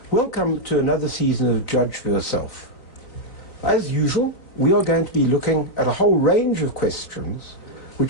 Welcome to another season of Judge for Yourself. As usual, we are going to be looking at a whole range of questions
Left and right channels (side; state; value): right; late; 3.8 ms